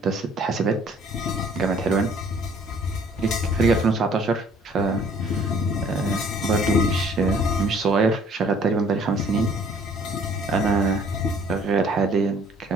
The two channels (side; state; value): both; normal; correlation 0.57